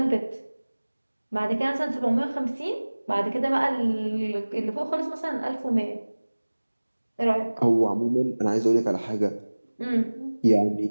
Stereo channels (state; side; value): inverted; both; correlation -1.00